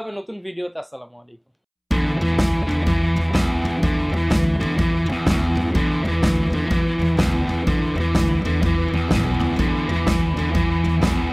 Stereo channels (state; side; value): identical; both; correlation 1.00